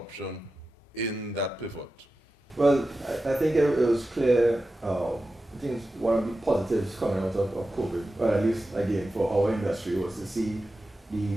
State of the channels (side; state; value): both; normal; correlation 0.92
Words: in that pivot? Well, I think it was clear. I think one of the positives coming out of COVID, or at least again for our industry, was to see